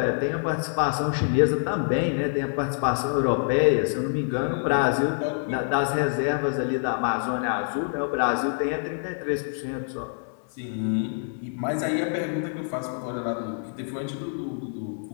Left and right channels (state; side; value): silent; right; 61 dB below the other